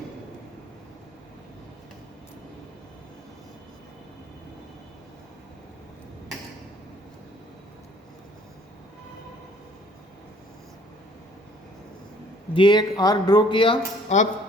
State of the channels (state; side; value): normal; both; correlation 0.57